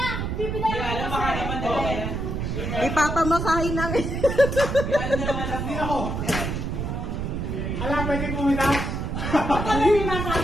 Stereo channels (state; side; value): noise; right; rumble, 3 dB below the sound